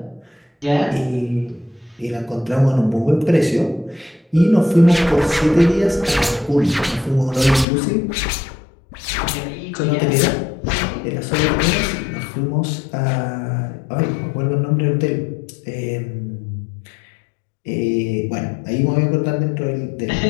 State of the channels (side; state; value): right; drops out; at 7.7 s